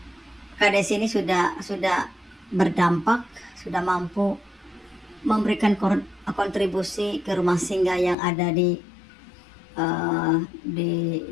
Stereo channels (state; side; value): drops out; right; at 8.2 s